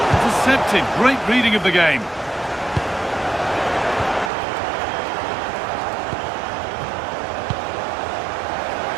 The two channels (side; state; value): left; drops out; at 4.3 s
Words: Intercepted. Great reading of the game.